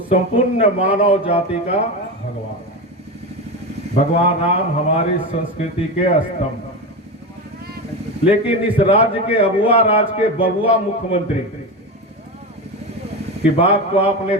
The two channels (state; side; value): normal; both; correlation 0.20